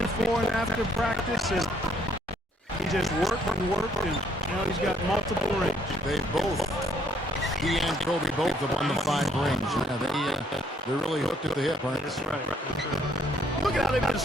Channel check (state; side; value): normal; both; correlation 0.67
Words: before and after practice, and he just worked, and now he's got multiple rings. He and Kobe both have won the 5 rings. Yeah, they're really hooked at the hip, aren't they? That's right. Look at how they've been